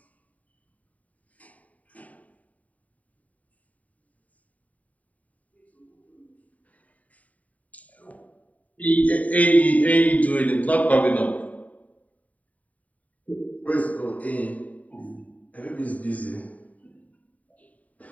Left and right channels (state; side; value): late; right; 0.070 ms